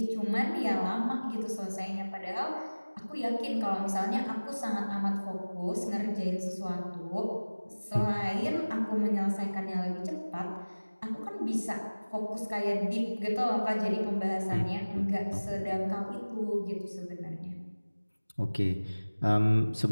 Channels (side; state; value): both; inverted; correlation -1.00